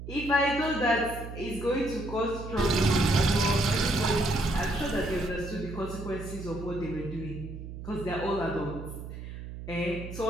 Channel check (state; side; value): noise; right; hum, 10 dB below the sound